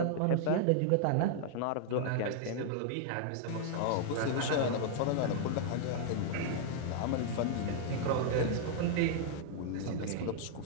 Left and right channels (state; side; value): different; both; correlation -0.01